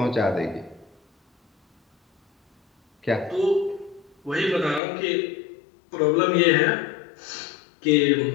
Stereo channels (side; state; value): right; drops out; at 4.8 s